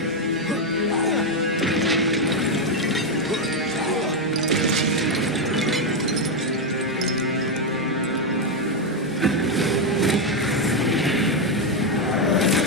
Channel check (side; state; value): both; normal; correlation 0.04